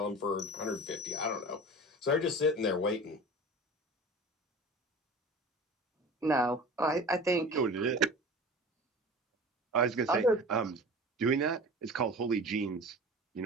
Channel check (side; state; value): both; normal; correlation 0.37